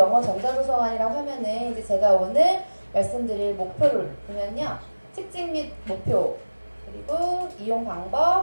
전자도서관이라고 하면은 이제 제가 오늘 말씀드릴 목표를 보면요, 특징 및 목표, 그리고 이용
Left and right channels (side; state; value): both; inverted; correlation -1.00